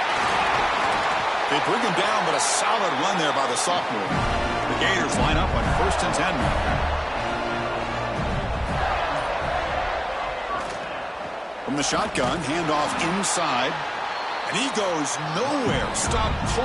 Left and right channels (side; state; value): both; identical; correlation 1.00